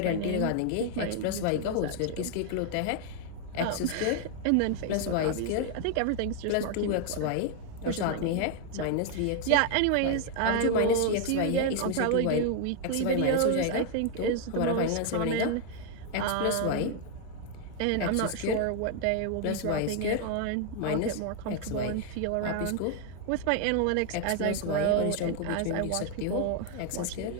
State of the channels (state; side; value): different; both; correlation 0.00